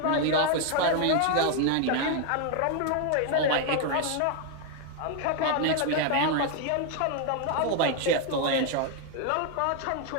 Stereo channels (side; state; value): both; different; correlation 0.01